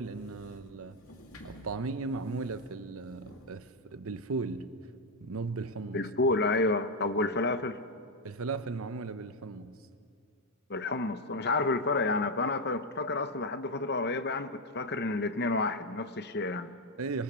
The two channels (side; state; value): both; normal; correlation 0.04